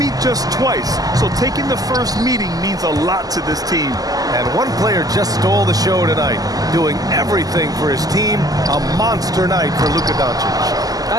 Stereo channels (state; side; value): late; left; 0.18 ms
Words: just twice, so taking the first meeting means a lot to this team. And one player just stole the show tonight, doing everything for his team. A monster night for Luka Doncic.